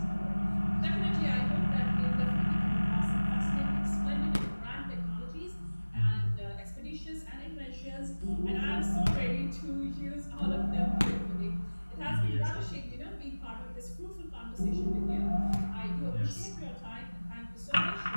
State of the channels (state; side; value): inverted; both; correlation -1.00